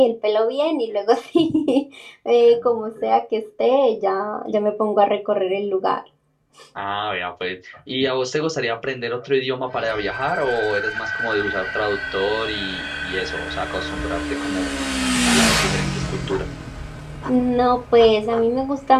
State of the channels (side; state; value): both; identical; correlation 1.00